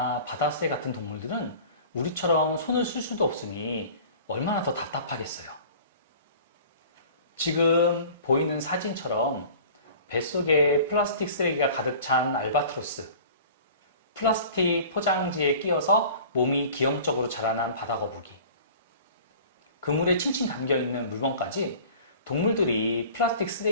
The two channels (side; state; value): both; inverted; correlation -0.44